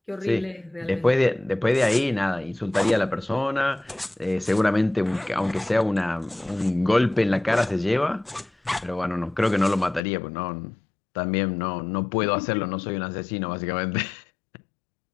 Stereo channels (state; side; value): drops out; right; at 10.0 s